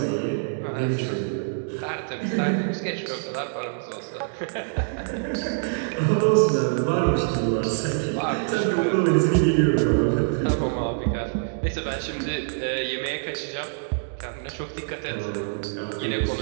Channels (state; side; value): silent; left; digital silence